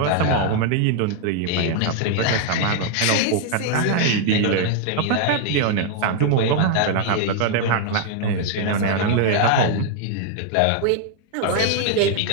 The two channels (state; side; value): different; both; correlation 0.00